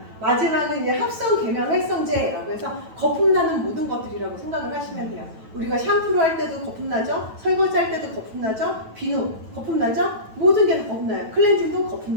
마지막은 이제 합성 계면 활성제라고 해서 거품 나는 모든 것들이라고 생각을 하시면 돼요. 우리가 샴푸를 할 때도 거품 나죠? 설거지 할 때도 거품 나죠? 비누 거품 나죠? 모든 게 다 거품 나요. 클렌징도 거품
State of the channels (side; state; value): left; late; 9.2 ms